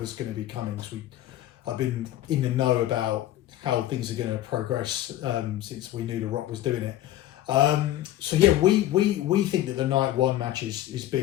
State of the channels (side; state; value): right; quieter; 13.5 dB